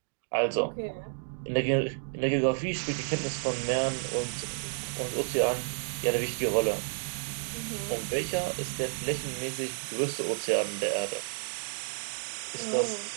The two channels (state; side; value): silent; left; digital silence